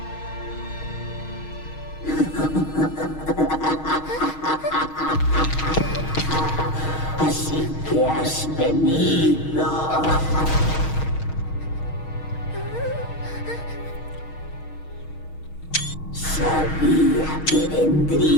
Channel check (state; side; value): late; right; 6.4 ms